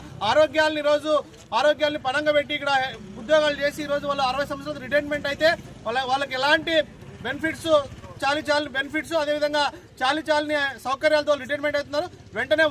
ఆరోగ్యాన్ని పణంగా పెట్టి ఇక్కడ ఉద్యోగాలు చేసి ఈరోజు వాళ్ళు 60 సంవత్సరాలు రిటైర్మెంట్ అయితే వాళ్ళకి ఎలాంటి బెనిఫిట్స్ చాలి బెనిఫిట్స్ అదేవిధంగా చాలని సౌకర్యాలతో రిటైర్మెంట్ అవుతున్నారు. వెంటనే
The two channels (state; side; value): identical; both; correlation 1.00